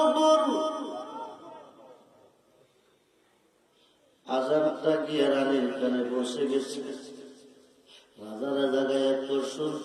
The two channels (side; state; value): both; identical; correlation 1.00